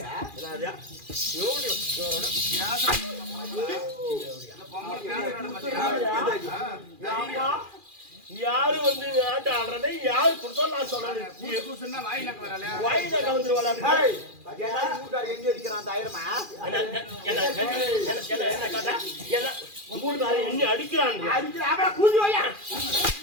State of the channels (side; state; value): left; late; 2.4 ms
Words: யாரு வந்து ஆட்ட ஆடுறதை யாரு கொடுத்தா நான் சொல்றேன். வாயில கலந்துருவாளா? எண்ணி அடிக்கிறான்.